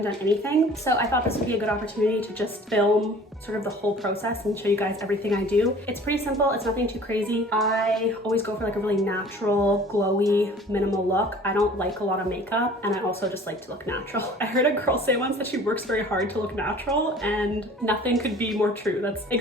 done anything. So I thought this would be a good opportunity to just film sort of the whole process and show you guys everything I do. It's pretty simple, it's nothing too crazy. I always go for like a really natural, glowy, minimal look. I don't like a lot of makeup and I also just like to look natural. I heard a girl say once that she works very hard to look natural and nothing could be more true. That's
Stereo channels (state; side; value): normal; both; correlation 0.48